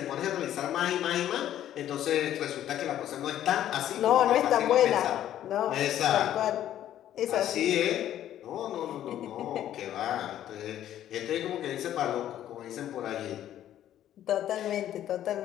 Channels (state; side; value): quieter; right; 11.7 dB